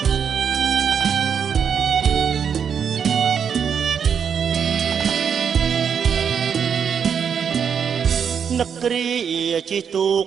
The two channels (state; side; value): quieter; left; 7.3 dB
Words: នឹកគ្រាជីទូក